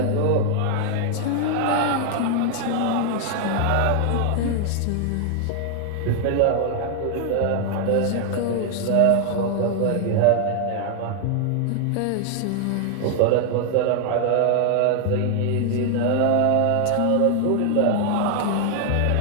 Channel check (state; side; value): different; both; correlation 0.00